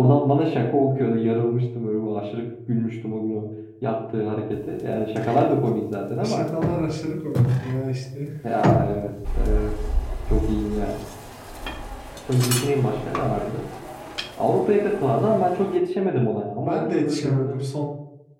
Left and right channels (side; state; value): both; identical; correlation 1.00